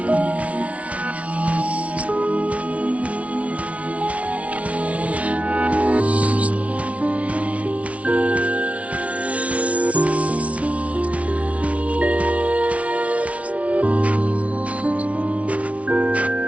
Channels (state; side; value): late; left; 0.065 ms